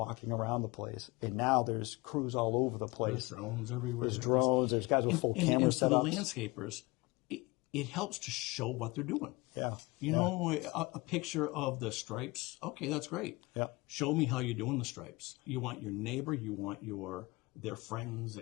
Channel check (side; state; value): right; quieter; 23.5 dB